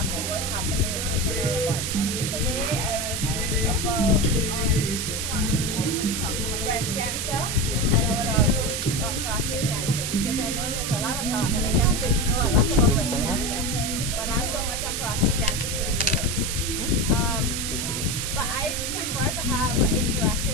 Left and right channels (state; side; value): noise; right; hiss, 2 dB below the sound